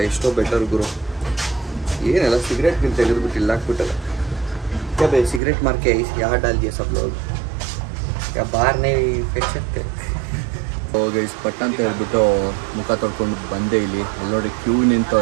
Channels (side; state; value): left; drops out; at 5.4 s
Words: ಎಷ್ಟೋ ಬೆಟರ್ ಗುರು. ಏನೆಲ್ಲ ಸಿಗರೇಟ್ ಗಿಂತ ತೆಗೆದುಬಿಟ್ಟು ಇಲ್ಲ ಹಾಕ್ಬಿಟ್ಟಲ್ಲ. क्या भाई सिगरेट मार के यहाँ डाल दिया सब लोग, क्या बाहर नहीं फेंक सकते. ಗೈಸ್ ಪಟ್ಟ ಅಂತ ಹೇಳ್ಬಿಟ್ಟು ಮುಖ ತೊಳ್ಕೊಂಡು ಬಂದೆ. ಇಲ್ಲಿ ಅಲ್ಲಿ ನೋಡಿ ಕ್ಯೂ